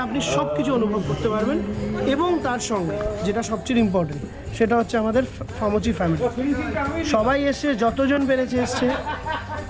আপনি সব কিছু অনুভব করতে পারবেন। এবং তার সঙ্গে যেটা সবচেয়ে ইম্পর্টেন্ট, সেটা হচ্ছে আমাদের ফামচি ফ্যামিলি। সবাই এসছে, যতজন পেরেছে এসছে।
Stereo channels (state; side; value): identical; both; correlation 1.00